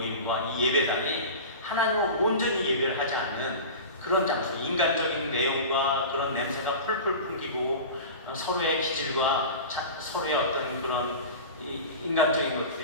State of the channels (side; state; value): both; inverted; correlation -0.32